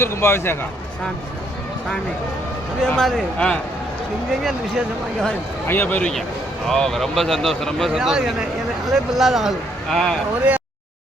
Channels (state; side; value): normal; both; correlation 0.70